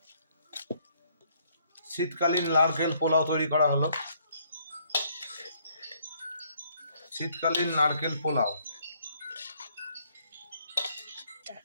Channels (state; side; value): inverted; both; correlation -0.66